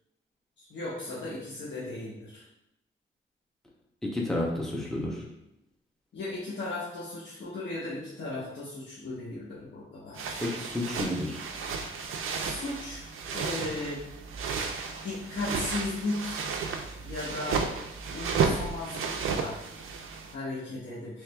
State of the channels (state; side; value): normal; both; correlation 0.39